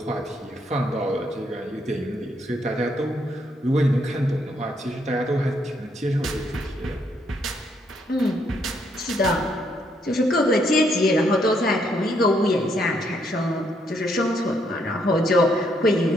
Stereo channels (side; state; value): both; normal; correlation 0.73